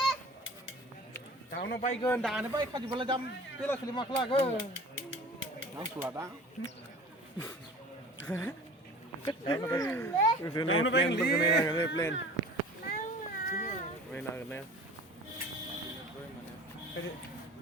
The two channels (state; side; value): normal; both; correlation 0.41